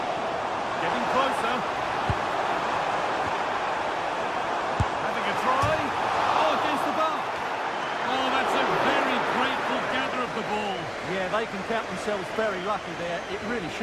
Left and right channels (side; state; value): both; identical; correlation 1.00